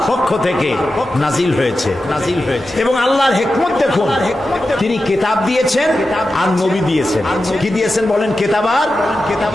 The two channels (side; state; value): both; normal; correlation 0.92